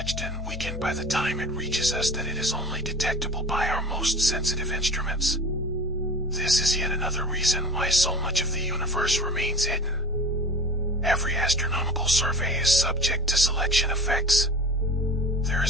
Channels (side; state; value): both; normal; correlation 0.38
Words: and weakened by the time it reaches us that it is only detectable by our most sensitive instruments. This is yet another reason why so much of the universe remains hidden. Every astronomical survey is subject to selection effects. There